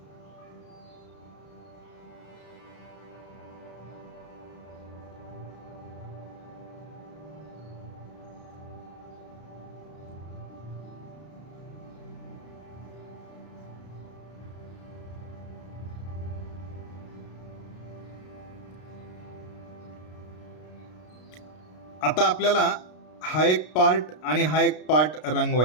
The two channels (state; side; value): late; right; 33 ms